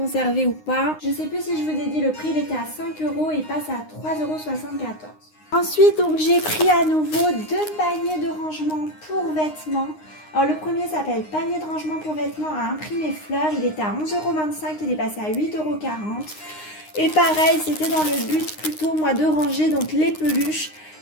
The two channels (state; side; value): late; right; 9.7 ms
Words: ou pas. Je ne sais plus si je vous ai dit le prix. Il était à 5 € et il passe à 3,74 €. Ensuite, donc j'ai pris à nouveau deux paniers de rangement pour vêtements. Alors le premier s'appelle panier de rangement pour vêtements à imprimer fleurs. Il était à 11,25 €, il est passé à 8,40 €. Et pareil, c'était dans le but plutôt moi de ranger donc les peluches